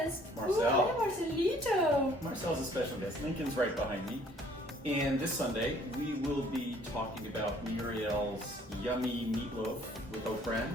Marcel. Hey, Marcelito. Marcel's a special guest. Lincoln's right behind me. And this Sunday, we will be talking about Muriel's yummy meatloaf with oat bran,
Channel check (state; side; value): normal; both; correlation 0.58